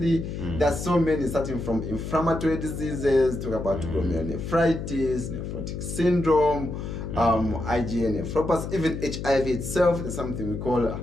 there's so many, starting from inflammatory diseases, talk about glomerulonephritis, nephrotic syndrome, IgA nephropathy, even HIV itself. There's something we call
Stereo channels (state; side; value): noise; left; hum, 6 dB below the sound